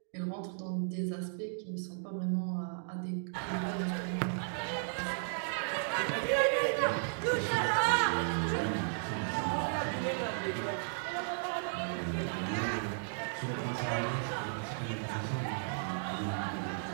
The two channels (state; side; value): silent; left; digital silence